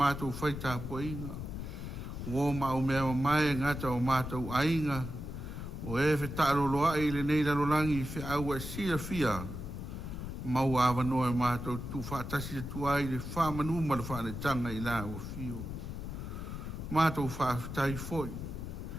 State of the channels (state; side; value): noise; left; rumble, 7 dB below the sound